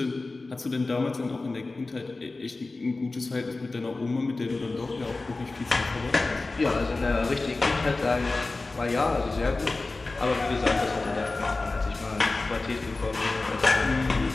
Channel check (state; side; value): quieter; right; 3.4 dB